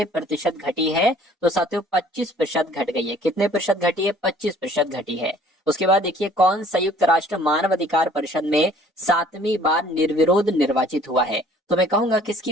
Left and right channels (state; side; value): normal; both; correlation 0.55